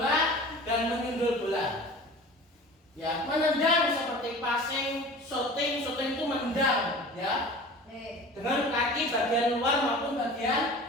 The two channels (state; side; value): normal; both; correlation 0.39